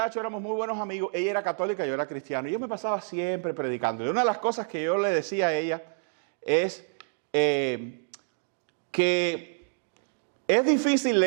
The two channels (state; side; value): silent; left; digital silence